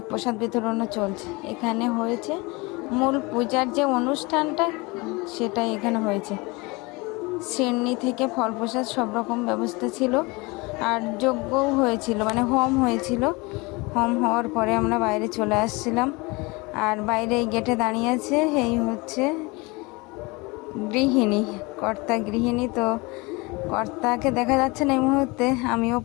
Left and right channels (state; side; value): quieter; right; 25.5 dB